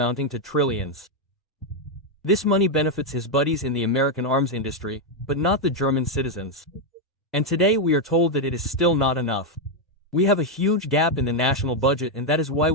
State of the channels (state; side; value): normal; both; correlation 0.02